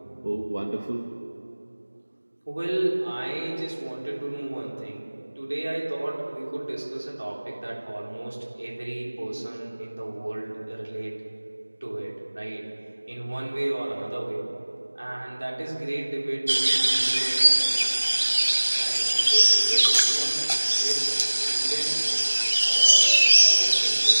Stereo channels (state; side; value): inverted; both; correlation -1.00